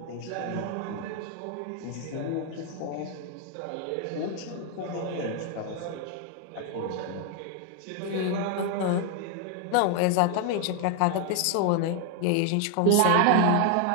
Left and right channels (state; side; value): different; both; correlation 0.00